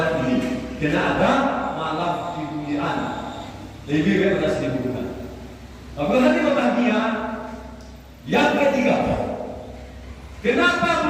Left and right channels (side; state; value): both; identical; correlation 1.00